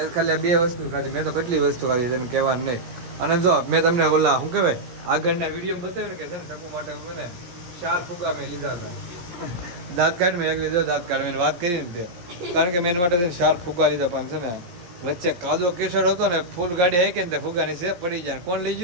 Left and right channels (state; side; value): late; left; 17 ms